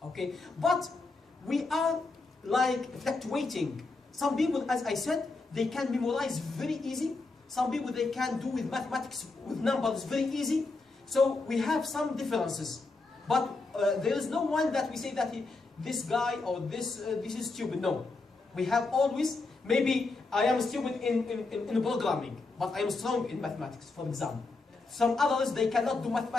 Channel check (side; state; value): right; quieter; 3.6 dB